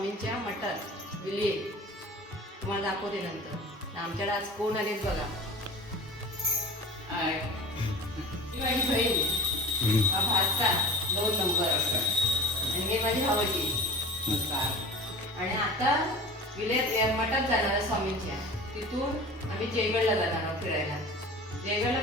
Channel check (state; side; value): normal; both; correlation 0.37